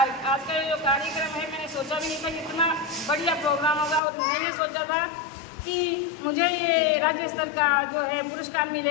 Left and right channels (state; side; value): drops out; right; at 4.0 s